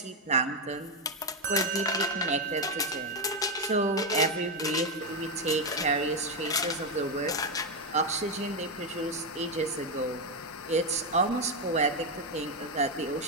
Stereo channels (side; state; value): both; normal; correlation 0.06